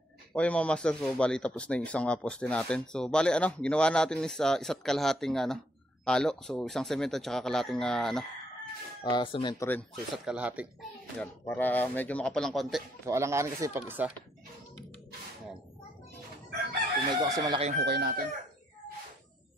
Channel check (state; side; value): normal; both; correlation 0.72